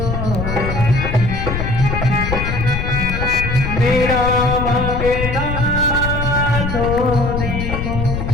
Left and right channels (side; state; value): left; noise; rumble, 3 dB below the sound